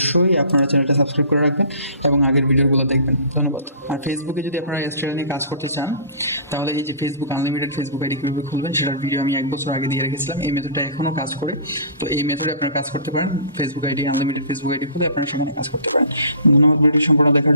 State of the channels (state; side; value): inverted; both; correlation -0.43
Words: আপনারা চ্যানেলটা সাবস্ক্রাইব করে রাখবেন এবং আগের ভিডিওগুলো দেখবেন। ধন্যবাদ। আর ফেসবুকে যদি আপনারা চ্যানেলে কাজ করতে চান, তাহলে এই যে ফেসবুক আনলিমিটেড ফেসবুক আইডি কীভাবে খুলবেন সেটার ভিডিও আমি 1 বছর আগে দিয়ে রেখেছিলাম। এই মেথডটা এখনও কাজ করে, তো এই মেথডে আপনারা কাজ করতে পারেন। Facebook ID unlimited Facebook ID খুলে আপনারা সেখানে কাজ করতে পারেন। ধন্যবাদ ভিডিও সম্পূর্ণ দেখার